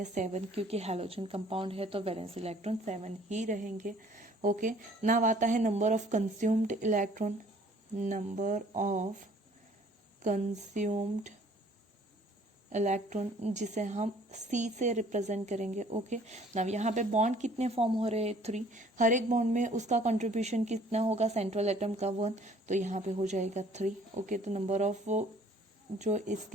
7, क्योंकि हैलोजन कंपाउंड है तो वैलेंस इलेक्ट्रॉन 7 ही रहेंगे। ओके नाउ आता है number of consumed electron, number of consumed electron जिसे हम C से रिप्रेजेंट करेंगे। ओके नाउ यहाँ पे बॉन्ड कितने फॉर्म हो रहे हैं, 3। हर एक बॉन्ड में उसका कंट्रीब्यूशन कितना होगा, सेंट्रल एटम का 1, तो यहाँ पे हो जाएगा 3। ओके तो नंबर ऑफ वो जो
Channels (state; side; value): normal; both; correlation 0.56